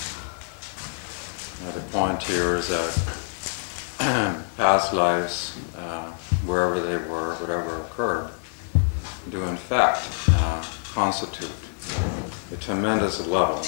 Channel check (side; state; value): right; silent; 61 dB below the other